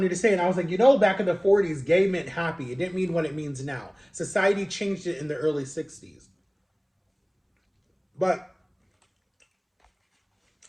to say. And I was like, you know, back in the 40s, gay meant happy. It didn't mean what it means now. Society changed it in the early 60s. But,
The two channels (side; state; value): both; identical; correlation 1.00